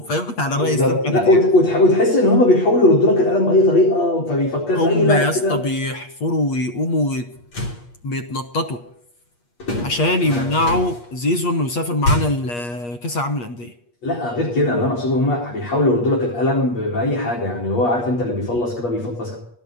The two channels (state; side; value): late; right; 8.4 ms